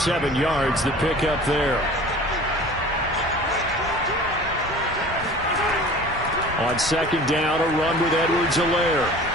yards the pick up there. On second down, a run with Edwards-Helaire.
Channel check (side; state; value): both; normal; correlation 0.43